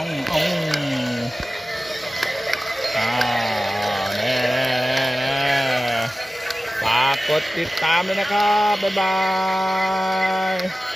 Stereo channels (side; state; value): both; normal; correlation 0.96